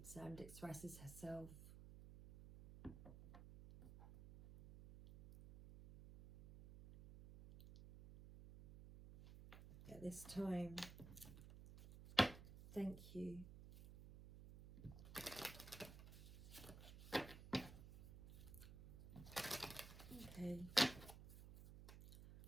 and expresses herself. At this time, thank you. Okay,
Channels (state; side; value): noise; right; hum, 13 dB below the sound